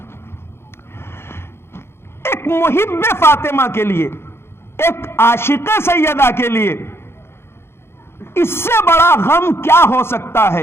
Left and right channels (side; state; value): right; late; 0.12 ms